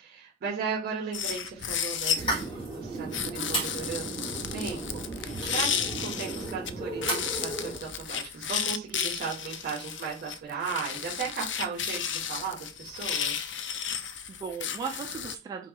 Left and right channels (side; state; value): both; normal; correlation 0.11